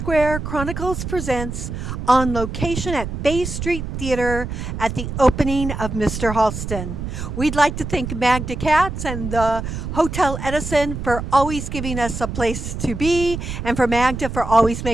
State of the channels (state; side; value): noise; right; rumble, 6 dB below the sound